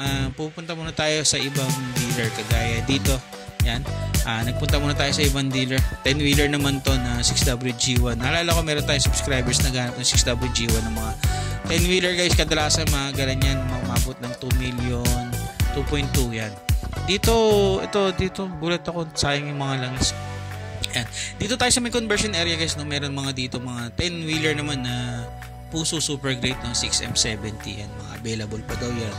pupunta muna tayo sa ibang dealer kagaya dito. Yan, nagpunta muna tayo sa ibang dealer. 10-wheeler naman to na 6WG1. Naalala ko meron tayong subscribers na ganap ng 6WG1 ng mga 10-wheeler guys. Kadalasan mga ganyan, umabot ng 2 million, 2.2 yan. Dito gulat ako, sayang yung mga langis. Yan. Dito tayo sa may conversion area guys, no, meron mga dito mga 10-wheeler naman na Puso super great, no, 6M70 yan, mga available pa daw yan.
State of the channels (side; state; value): both; identical; correlation 1.00